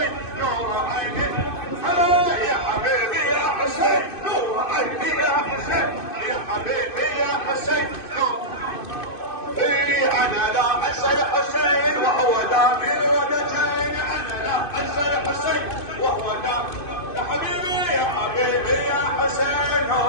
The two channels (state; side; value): late; right; 2.5 ms